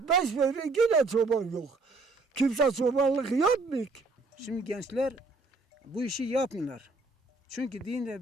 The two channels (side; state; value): left; quieter; 3.5 dB